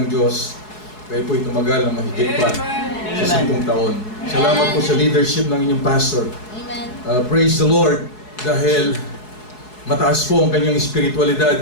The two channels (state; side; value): late; right; 4.7 ms